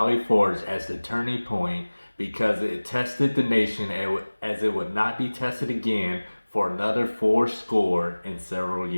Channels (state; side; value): inverted; both; correlation -1.00